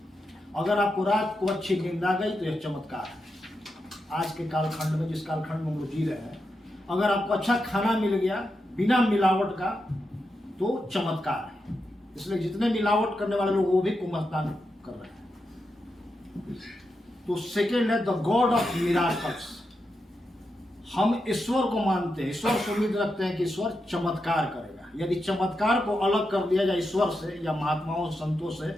अगर आपको रात को अच्छी नींद आ गई तो यह चमत्कार है। आज के कालखंड में, जिस कालखंड में हम लोग जी रहे हैं, अगर आपको अच्छा खाना मिल गया बिना मिलावट का तो चमत्कार है। इसलिए जितने मिलावट करने वाले लोग वो भी कुंभ स्नान कर रहे हैं। तो सेकेंड है, द गॉड ऑफ मिराकल्स। हम ईश्वर को मानते हैं, ईश्वर से उम्मीद रखते हैं कि ईश्वर चमत्कार करेगा। यदि चमत्कार को अलग कर दिया जाए ईश्वर से या महात्माओं संतों से,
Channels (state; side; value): normal; both; correlation 0.87